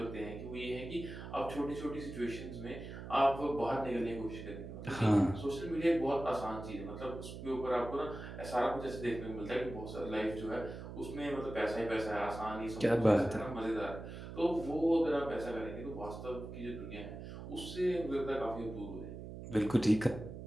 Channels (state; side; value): noise; right; hum, 10 dB below the sound